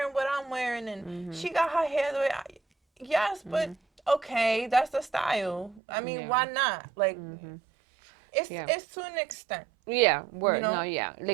what I'm wearing, and Mhm. she got her hair the way. Yes, but Mhm. okay, that's the style. I mean, Yeah. why not? Like, Mhm. it's Yeah. it's to an extent, Yeah. you Word. know. No. Yeah.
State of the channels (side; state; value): left; drops out; at 5.8 s